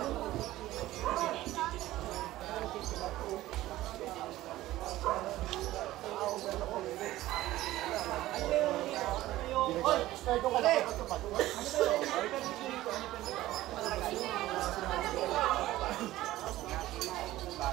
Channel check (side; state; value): left; quieter; 15.8 dB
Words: Oy, Start ko pala.